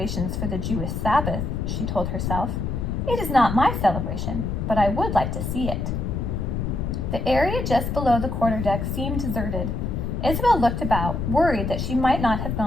for the Jewish Sabbath, she told herself. It is not my celebration, but I would like to see it. The area just below the quarterdeck seemed deserted. Isabel looked about, worried that she might not have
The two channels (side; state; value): left; noise; rumble, 2 dB below the sound